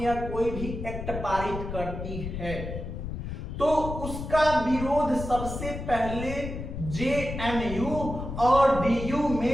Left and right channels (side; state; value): left; noise; rumble, 7 dB below the sound